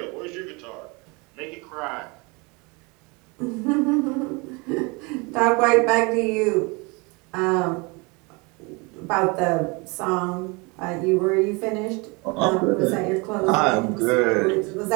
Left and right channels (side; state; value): left; quieter; 28.3 dB